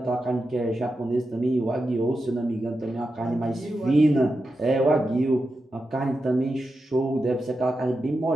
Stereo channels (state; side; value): normal; both; correlation 0.89